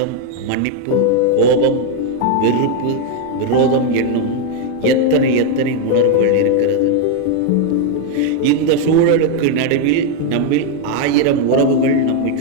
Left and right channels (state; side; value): different; both; correlation 0.01